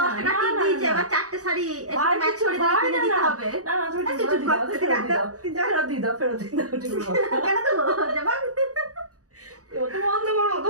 10 টাকা না, টিপ না, দিয়েছে, না। এবার 4টে শাড়ি ভাই ম্যাচ কিছু করে ভাই কিনে না, দিতে না। হবে। না না তুমি তুই ফেরত চুপ দিয়ে দাও, কর, তুই ফেরত দিয়ে রাখ, দাও, তুই যা। ফেরত দিয়ে দাও, ফেরত দিয়ে দাও, ঠিক আছে। কেন তো যাবা? ও তো বন্ধ করো,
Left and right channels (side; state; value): left; late; 0.67 ms